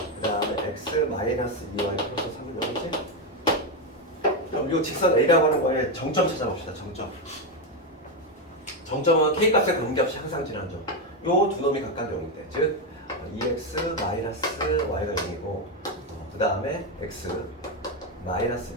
다음에 x 마이너스 2y 플러스 3이 되겠지? 그럼 이 직선 A라고 하는 거에 정점 찾아봅시다. 정점은 k 값에 관계없이 항상 지나는 점. 요 두 놈이 각각 0인데 즉 2x 마이너스 y가 0이고 그 다음에 x 마이너스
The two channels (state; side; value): normal; both; correlation 0.08